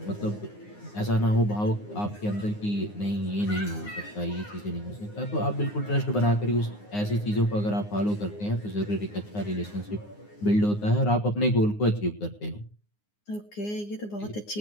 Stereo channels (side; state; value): right; late; 9.7 ms